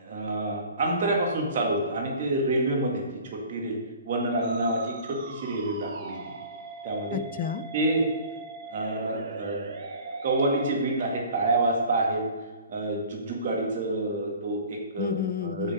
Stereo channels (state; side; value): inverted; both; correlation -0.45